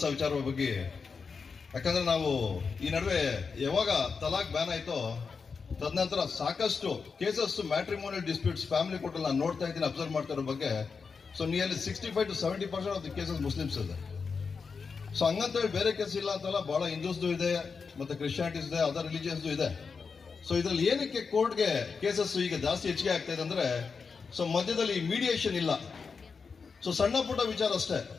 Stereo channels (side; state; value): right; quieter; 5.2 dB